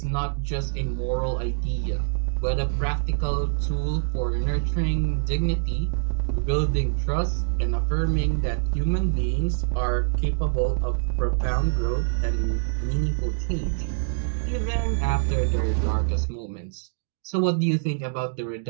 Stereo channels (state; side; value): silent; left; digital silence